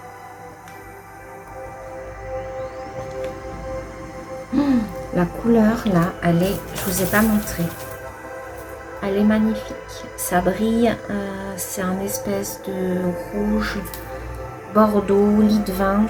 La couleur là, elle est, je vous ai pas montré. Elle est magnifique. Ça brille, c'est un espèce de rouge, bordeaux, lit de vin,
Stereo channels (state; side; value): identical; both; correlation 1.00